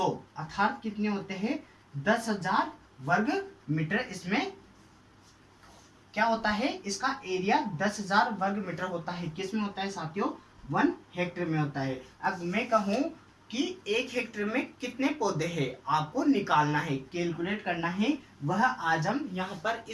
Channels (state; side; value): identical; both; correlation 1.00